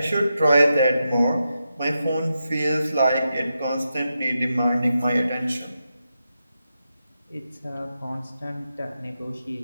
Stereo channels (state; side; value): inverted; both; correlation -0.87